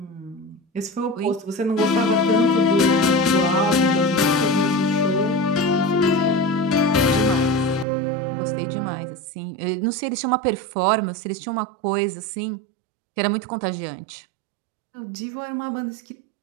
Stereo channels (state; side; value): drops out; left; at 7.9 s